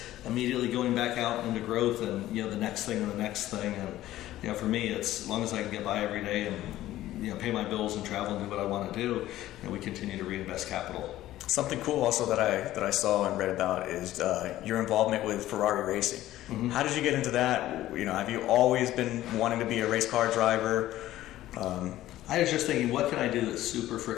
immediately going back out into growth, and the next thing and the next thing. And for me, it's as long as I can get by every day and pay my bills and travel and do what I want to do, we continue to reinvest capital. Something cool also that I saw and read about is your involvement with Ferrari Racing. Mm-hmm. How did you get into that? Have you always been wanting to be a race car driver? I was just thinking, what can I do that's super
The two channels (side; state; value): right; quieter; 14.6 dB